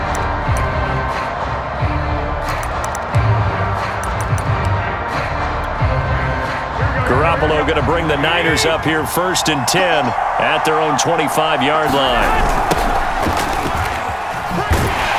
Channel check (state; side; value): identical; both; correlation 1.00